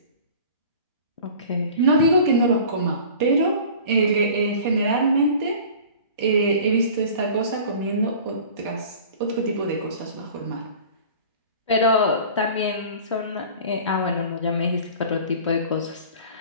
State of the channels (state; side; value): inverted; both; correlation -0.42